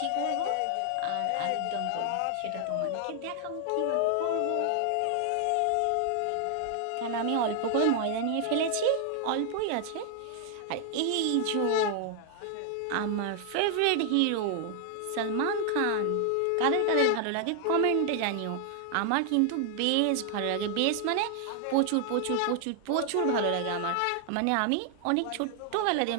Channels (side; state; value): both; different; correlation 0.00